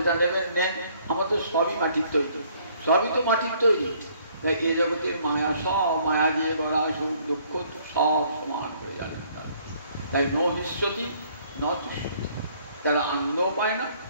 নেবেন নেন, আমার তো সবই মাটির তৈরি, সবই তো মাটির তৈরি। এই জগতের মায়া, সব মায়া দিয়ে গড়া, সুখ দুঃখ সব সমান করে জানেন। তাই ন হিষ্যতি ন তুষ্যতি। তারা আনন্দ পায় না,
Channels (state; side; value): inverted; both; correlation -0.62